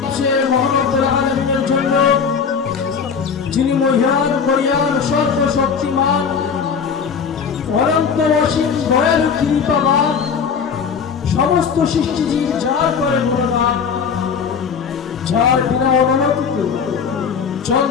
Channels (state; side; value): quieter; right; 6.3 dB